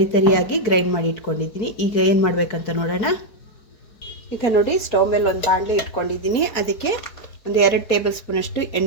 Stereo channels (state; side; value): late; right; 4.7 ms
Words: ತರಿಯಾಗಿ ಗ್ರೈಂಡ್ ಮಾಡಿ ಇಟ್ಕೊಂಡಿದ್ದೀನಿ. ಈಗ ಏನು ಮಾಡಬೇಕಂತ ನೋಡೋಣ. ಈಗ ನೋಡಿ, ಸ್ಟವ್ ಮೇಲೆ ಒಂದು ಬಾಣಲೆ ಇಟ್ಕೊಂಡಿದ್ದೀನಿ. ಅದಕ್ಕೆ ಒಂದು 2 ಟೇಬಲ್ ಸ್ಪೂನಷ್ಟು